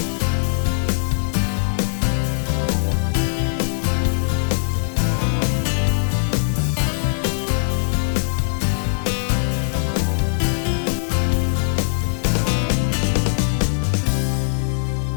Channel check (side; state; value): right; silent; 65 dB below the other